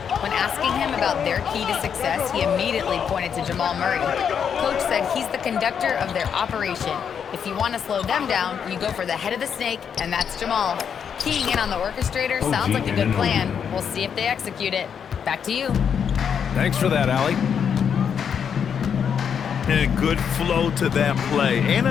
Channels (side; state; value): right; quieter; 7.5 dB